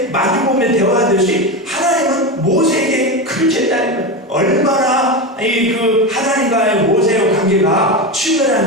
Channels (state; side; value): normal; both; correlation 0.18